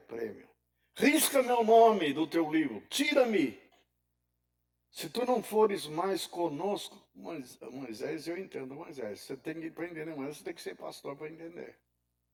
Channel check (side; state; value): both; identical; correlation 1.00